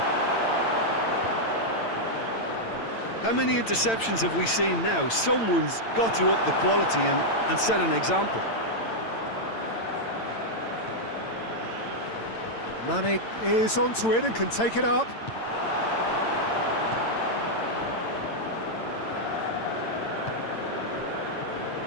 How many interceptions have we seen now? Someone's got to up the quality and set an example. Mane is onto it and can take it up.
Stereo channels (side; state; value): right; late; 8.9 ms